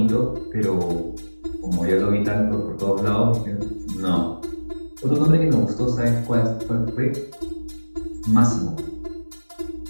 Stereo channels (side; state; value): both; inverted; correlation -1.00